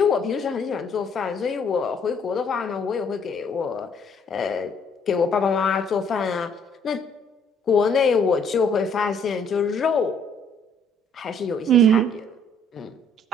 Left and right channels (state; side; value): normal; both; correlation 0.63